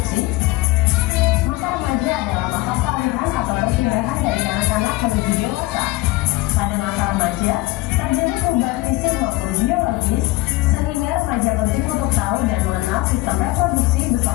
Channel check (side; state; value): right; quieter; 19.7 dB